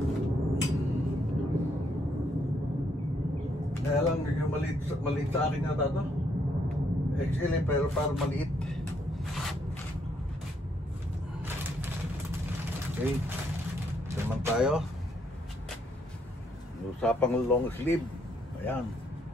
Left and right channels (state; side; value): normal; both; correlation 0.72